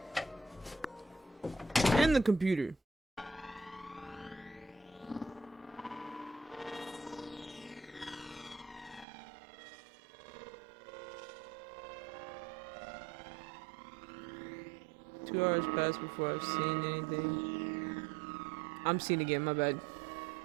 And the computer. Two hours passed before I've seen anything. I'm seeing again, my bad.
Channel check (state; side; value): drops out; left; at 9.1 s